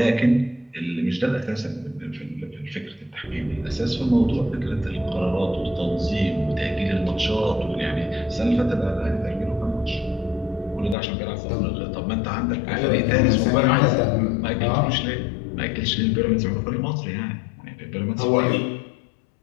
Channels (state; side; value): drops out; right; at 11.0 s